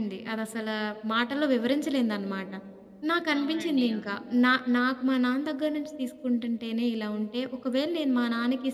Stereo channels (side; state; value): both; identical; correlation 1.00